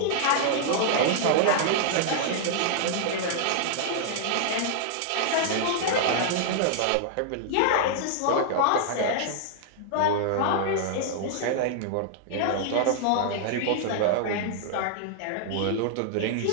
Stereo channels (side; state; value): both; different; correlation -0.01